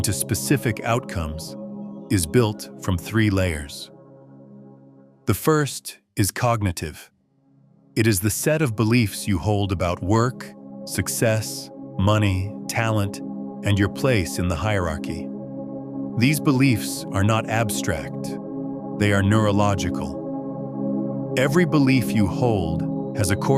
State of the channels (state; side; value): identical; both; correlation 1.00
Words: specific outcomes, is built from 3 layers. The first is cognitive. It is the set of beliefs you hold about work, success, money, talent, and your place in the hierarchy. These beliefs are not abstract. They are neurological. Every belief you hold has a